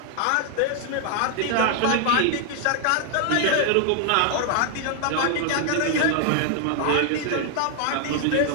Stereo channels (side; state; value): both; different; correlation 0.00